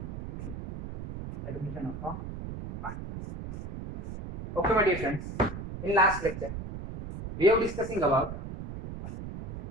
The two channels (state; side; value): noise; right; rumble, 8 dB below the sound